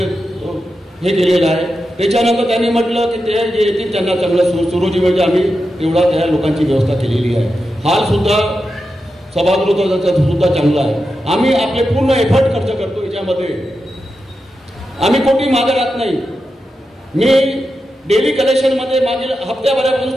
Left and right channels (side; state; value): both; normal; correlation 0.89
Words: केलेलं आहे. त्याच्यानंतर त्यांनी म्हटलं की ते जे येतील त्यांना चांगलं सुरुची म्हणजे आम्ही तेवढा त्या लोकांची व्यवस्था केलेली आहे. हाल सुद्धा सभागृहाचा सुद्धा चांगला आहे. आम्ही आपले पूर्ण एफर्ट खर्च करतो याच्यामध्ये. आम्ही कोणी मागे राहत नाही. मी डेली कलेक्शनमध्ये मागील हप्त्याभरापासून